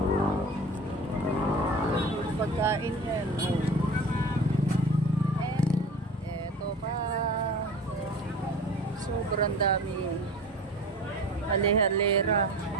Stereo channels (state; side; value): normal; both; correlation 0.37